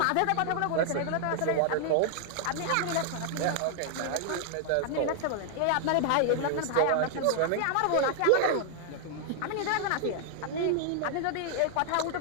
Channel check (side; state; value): both; different; correlation 0.00